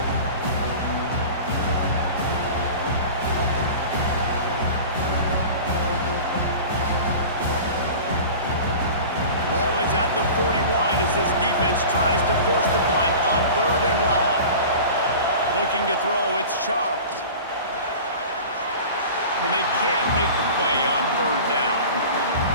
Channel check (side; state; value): both; inverted; correlation -0.37